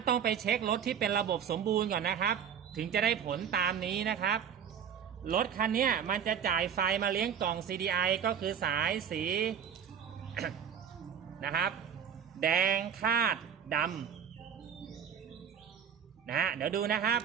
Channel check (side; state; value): left; quieter; 8.1 dB